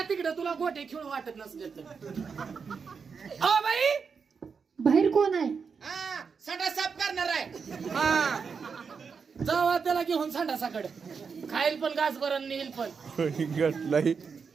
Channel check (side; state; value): left; quieter; 5.7 dB